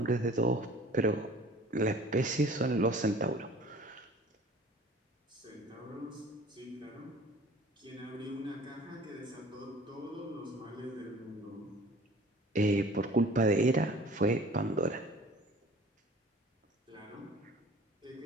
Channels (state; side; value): normal; both; correlation 0.48